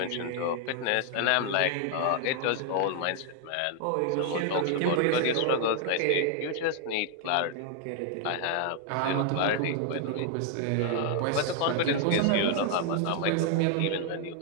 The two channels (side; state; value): both; different; correlation 0.00